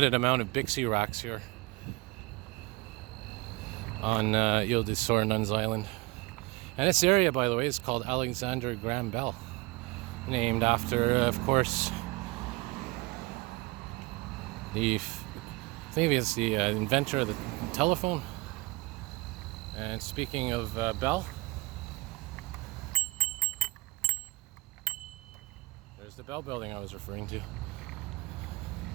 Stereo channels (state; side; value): quieter; left; 23.0 dB